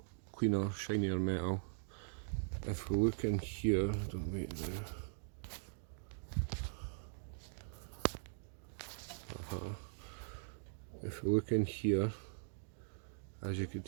cleaner, shinier metal. If we look in here, if we look in here, as you can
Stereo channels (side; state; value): left; silent; digital silence